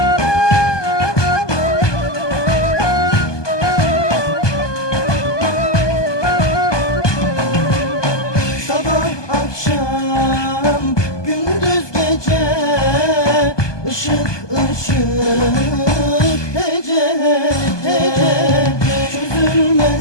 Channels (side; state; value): right; late; 1.2 ms